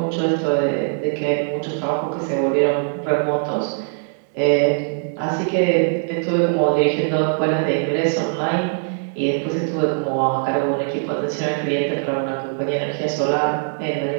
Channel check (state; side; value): silent; left; digital silence